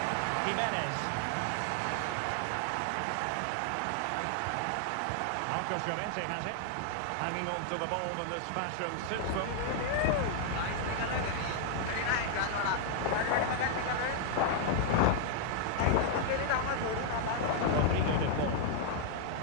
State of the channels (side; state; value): both; different; correlation 0.00